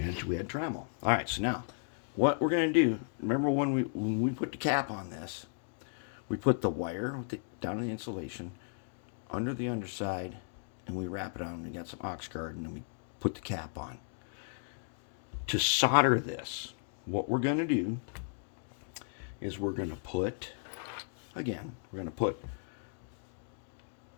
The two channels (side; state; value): right; silent; digital silence